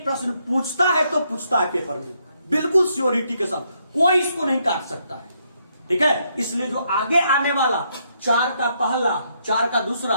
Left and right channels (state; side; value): inverted; both; correlation -0.75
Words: प्रश्न पूछता है तो पूछता है पेपर में, बिल्कुल श्योरिटी के साथ, कोई इसको नहीं काट सकता है, ठीक है। इसलिए जो आगे आने वाला 4 का पहला, 4 का दूसरा,